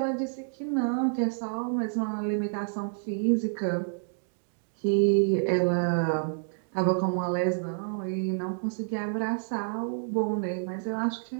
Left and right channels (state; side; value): silent; left; digital silence